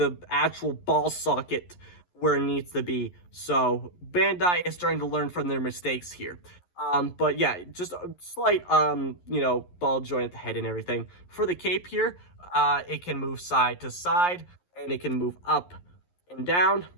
actual ball socket where it needs to be. So Bandai is starting to learn from their mistakes here. But yeah, just a slight, ball joint at the head and everything. For the cape here, it can move side to side, and it can move up and down.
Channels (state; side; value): late; right; 11 ms